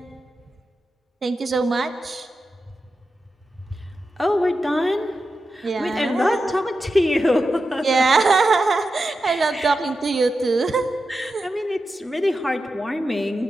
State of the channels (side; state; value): both; normal; correlation 0.90